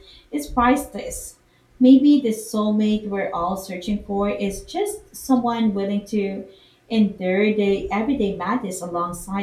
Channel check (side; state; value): both; identical; correlation 1.00